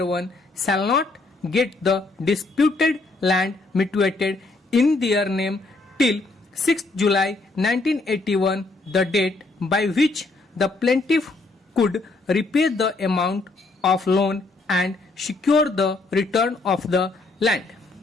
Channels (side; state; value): right; quieter; 3.3 dB